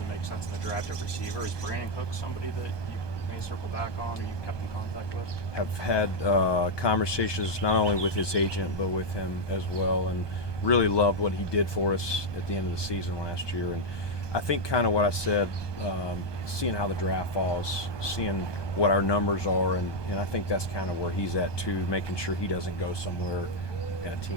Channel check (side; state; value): right; late; 1.2 ms